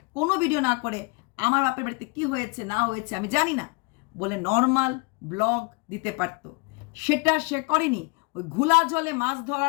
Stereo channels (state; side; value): quieter; right; 29.7 dB